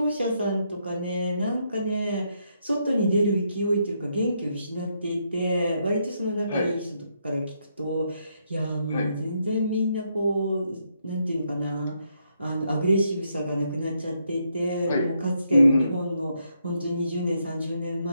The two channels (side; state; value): both; inverted; correlation -0.77